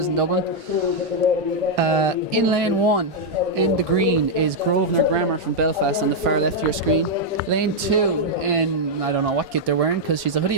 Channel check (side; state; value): both; normal; correlation -0.03